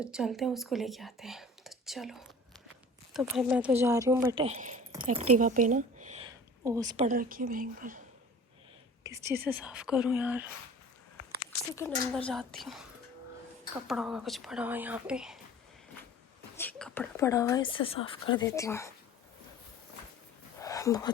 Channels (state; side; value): normal; both; correlation 0.43